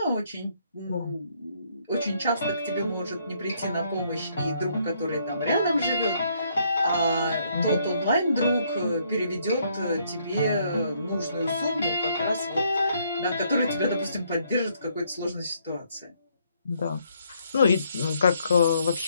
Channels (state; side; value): inverted; both; correlation -0.70